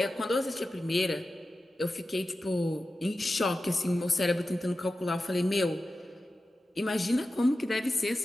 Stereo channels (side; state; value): both; normal; correlation 0.93